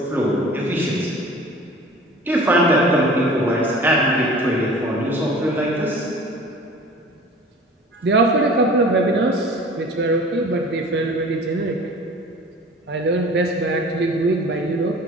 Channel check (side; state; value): both; normal; correlation 0.44